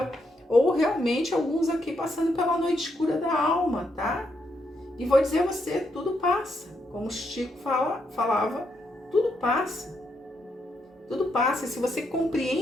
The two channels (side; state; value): both; normal; correlation 0.79